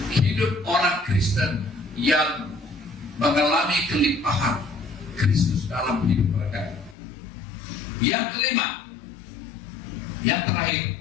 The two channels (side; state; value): right; drops out; at 7.0 s